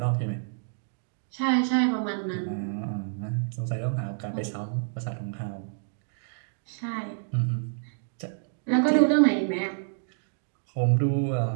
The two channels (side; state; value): left; silent; digital silence